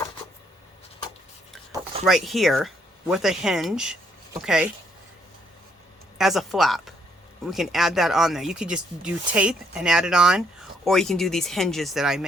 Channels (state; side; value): normal; both; correlation 0.70